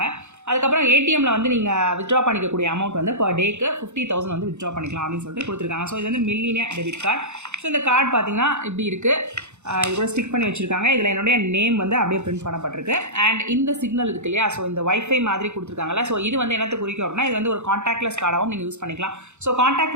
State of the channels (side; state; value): left; late; 0.83 ms